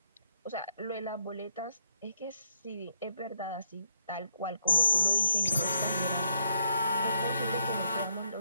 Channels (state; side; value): inverted; both; correlation -0.77